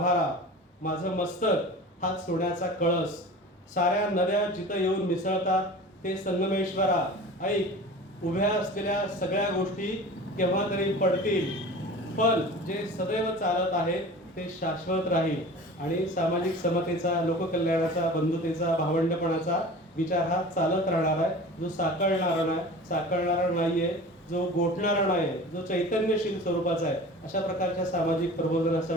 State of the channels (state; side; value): normal; both; correlation 0.38